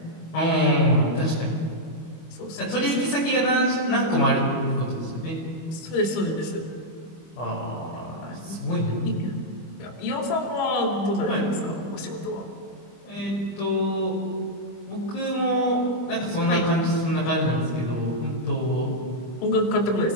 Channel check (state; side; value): late; right; 25 ms